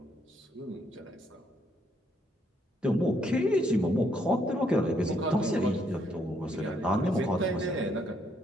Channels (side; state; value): both; normal; correlation 0.72